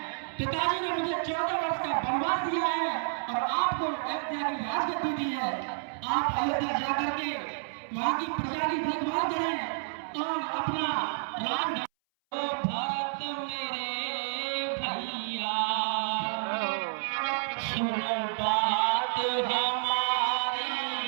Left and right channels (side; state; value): left; silent; 58 dB below the other